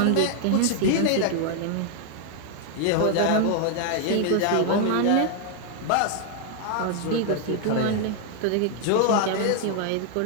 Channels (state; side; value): different; both; correlation 0.00